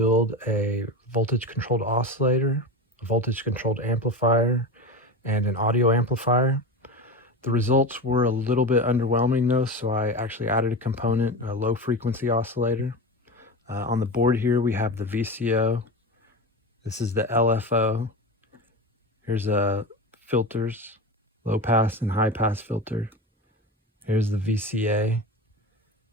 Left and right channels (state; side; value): normal; both; correlation 0.25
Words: a voltage-controlled oscillator, a voltage-controlled amplifier, and an audio amplifier. The results were a little bit underwhelming though, so I actually added a component, a low-frequency oscillator. On the board here, we have the VCO. This is the LFO. Here's filters, low-pass and high-pass filter. Here's the VCA,